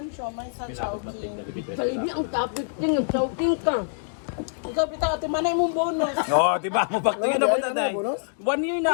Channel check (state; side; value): silent; right; digital silence